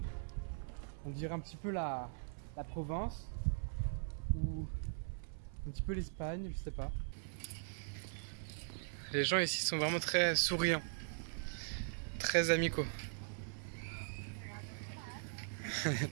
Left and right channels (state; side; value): silent; left; 51 dB below the other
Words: On dirait un petit peu la Provence ou un petit peu l'Espagne, je sais pas. Les gens ici sont vraiment très souriants, très amicaux.